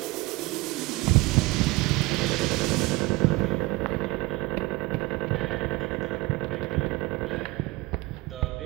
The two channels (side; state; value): left; quieter; 21.8 dB